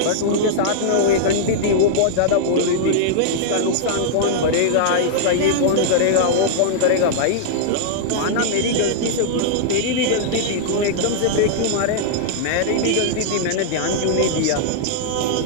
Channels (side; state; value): both; different; correlation -0.02